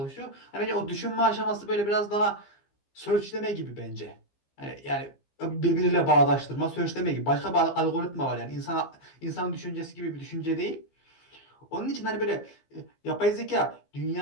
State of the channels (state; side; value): late; right; 15 ms